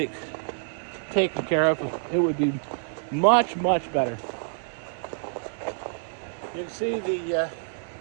taken care of, it would be much, much better. You can see this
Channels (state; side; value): silent; left; 60 dB below the other